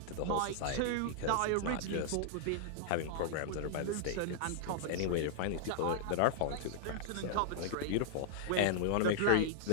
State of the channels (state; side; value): different; both; correlation -0.01